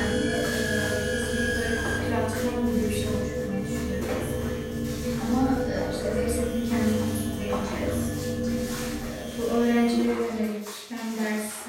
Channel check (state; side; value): identical; both; correlation 1.00